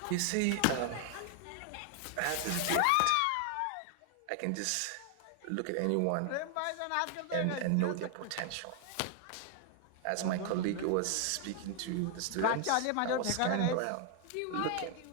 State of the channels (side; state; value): both; different; correlation 0.00